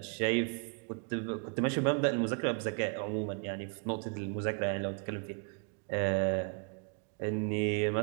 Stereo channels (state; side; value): quieter; left; 39.0 dB